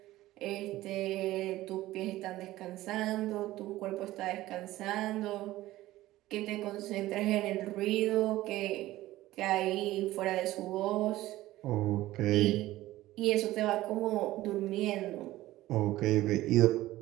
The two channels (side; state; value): left; quieter; 16.3 dB